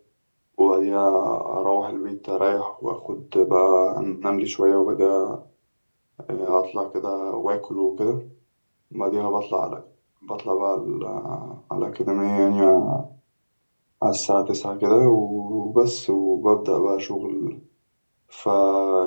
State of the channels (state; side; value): inverted; both; correlation -1.00